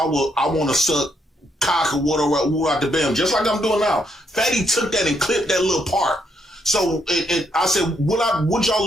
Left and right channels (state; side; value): normal; both; correlation 0.75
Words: to suck cock or whatever out the bam, just like I'm doing now, Fatty took that and clipped that little part. So and I said, would y'all